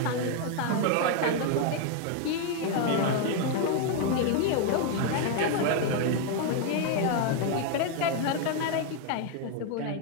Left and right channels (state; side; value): different; both; correlation 0.00